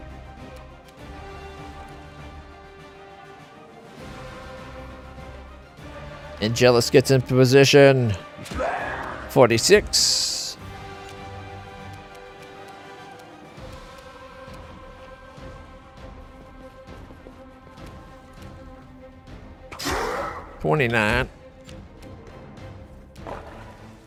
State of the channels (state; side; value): identical; both; correlation 1.00